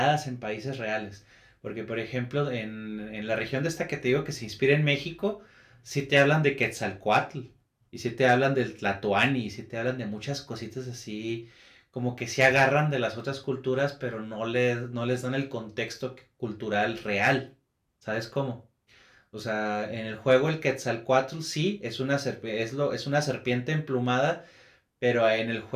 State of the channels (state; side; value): identical; both; correlation 1.00